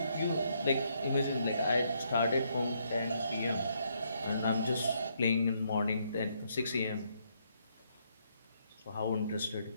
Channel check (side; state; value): both; inverted; correlation -0.74